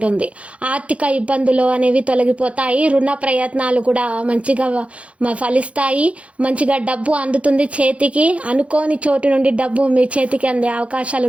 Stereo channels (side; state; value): left; late; 0.063 ms